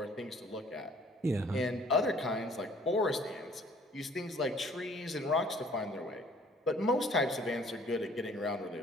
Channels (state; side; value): normal; both; correlation 0.56